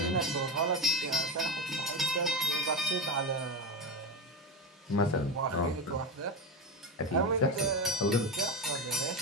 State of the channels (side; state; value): both; normal; correlation 0.17